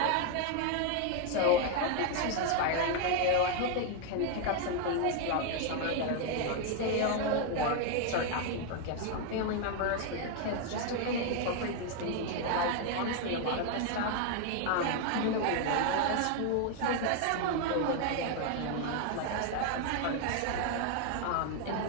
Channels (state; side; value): different; both; correlation 0.01